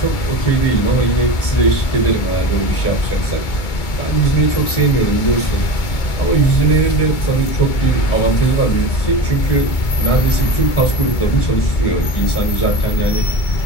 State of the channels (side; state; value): right; late; 2.2 ms